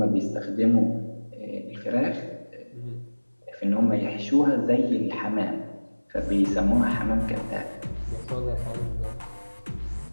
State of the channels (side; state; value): both; inverted; correlation -1.00